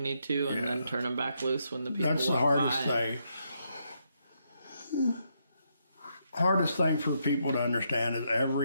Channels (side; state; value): both; inverted; correlation -0.78